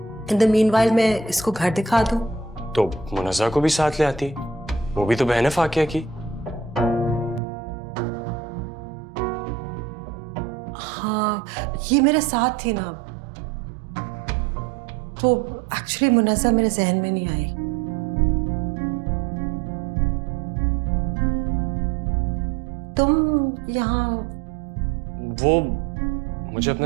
इन द मीनवाइल मैं इसको घर दिखा दूं। तो मुनज़्ज़ा को भी साथ ले आती, वो भी तो बहन है फाकिया की। हाँ ये मेरे साथ थी ना, तो एक्चुअली मुनज़्ज़ा मेरे जहन में नहीं आई। तुम यहाँ? वो मुझे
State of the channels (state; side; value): drops out; left; at 7.4 s